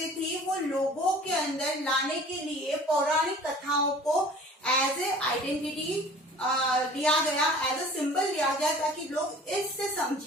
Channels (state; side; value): normal; both; correlation 0.46